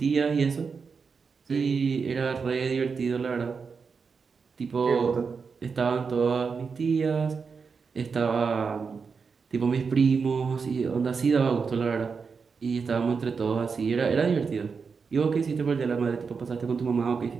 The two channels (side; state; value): left; quieter; 5.4 dB